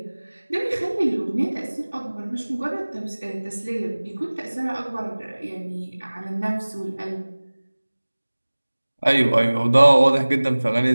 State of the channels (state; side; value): inverted; both; correlation -1.00